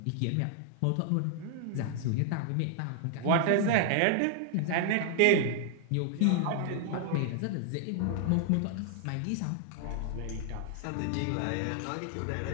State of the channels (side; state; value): both; different; correlation 0.00